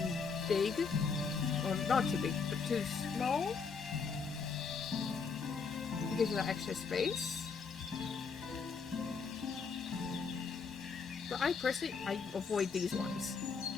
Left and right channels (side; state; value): right; quieter; 5.4 dB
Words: big, or not too big, but too small. It gives you that extra space. But I personally, I avoid these ones.